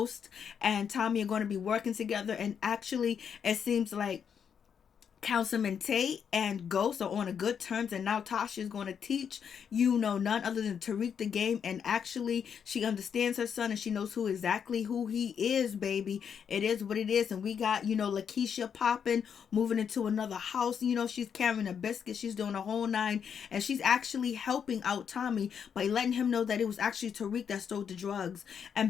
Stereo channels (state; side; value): quieter; right; 7.5 dB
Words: and Tommy are going to be working together, and actually it seems like Councilman Tate and Ghost are on a good terms, and now Tasha is going to teach none other than Tariq the game, and actually she understands her son and she knows exactly who he is, baby. It is what it is. And we got Lakeisha popping, moving into another house. She's carrying a biscuit, she's doing a whole nine, and she's actually helping out Tommy by letting him know that it was actually Tariq that stole the drugs.